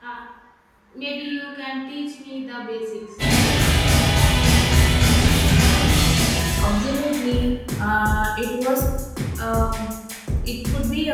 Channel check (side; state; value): both; identical; correlation 1.00